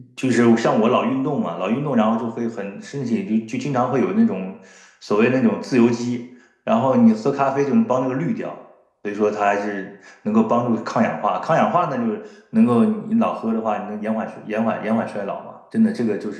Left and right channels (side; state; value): both; identical; correlation 1.00